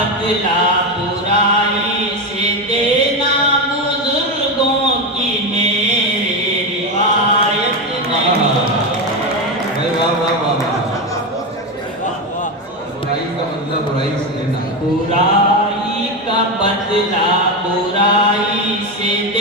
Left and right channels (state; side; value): normal; both; correlation 0.14